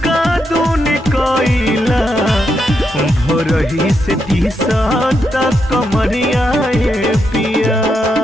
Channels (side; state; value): both; normal; correlation 0.82